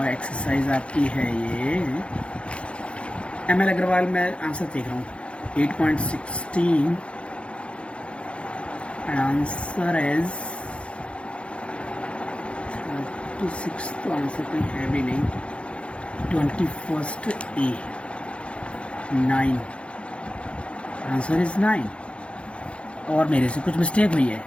एक्सरसाइज आपकी है ये ML अग्रवाल। मैं आंसर देख रहा हूँ 8.16 एंड आंसर इज 36। तो आंसर कोई है भी नहीं। 21 A 9, आंसर इज 9। और मेरे से कुछ मिस्टेक हुई है।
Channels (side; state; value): right; late; 0.060 ms